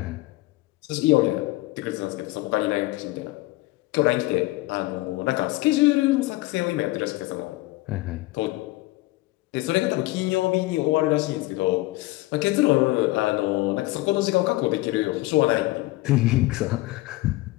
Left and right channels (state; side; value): quieter; right; 19.7 dB